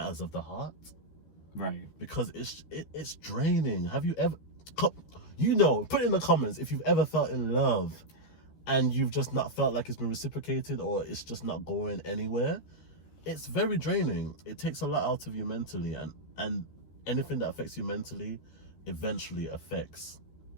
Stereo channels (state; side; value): late; right; 13 ms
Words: of the heart. Right. Because it's draining. Have you ever, you know, put in the comments if you've ever felt in love and you've just not felt like it's been reciprocated or it's just not going anywhere. It's very draining. It takes a lot out of you mentally, and anything that affects you mentally eventually affects